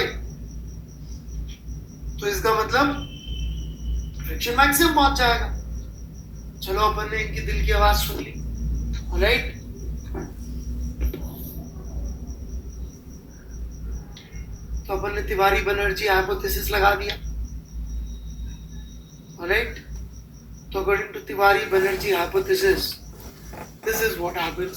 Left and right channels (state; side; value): identical; both; correlation 1.00